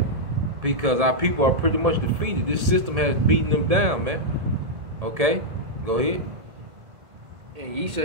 Because our people are pretty much defeated. This system has beaten them down, man. Go ahead. And ye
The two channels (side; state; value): left; late; 1.7 ms